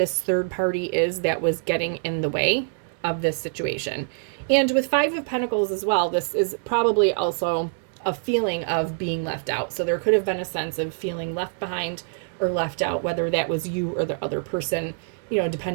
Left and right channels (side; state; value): left; silent; digital silence